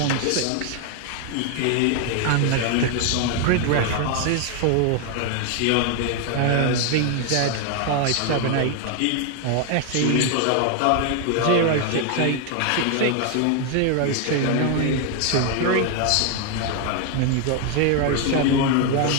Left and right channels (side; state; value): both; different; correlation 0.01